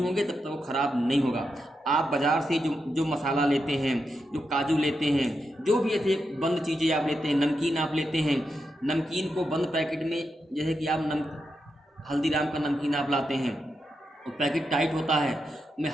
तब तक वो ख़राब नहीं होगा। आप बाज़ार से जो मसाला लेते हैं, जो काजू लेते हैं, जो भी ऐसे बंद चीज़ें आप लेते हैं, नमकीन आप लेते हैं, नमकीन को बंद पैकेट में, जैसे कि आप हल्दीराम का नमकीन आप लाते हैं, वो पैकेट टाइट होता है, उसमें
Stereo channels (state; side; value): normal; both; correlation 0.86